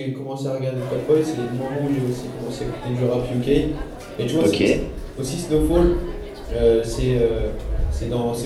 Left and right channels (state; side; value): identical; both; correlation 1.00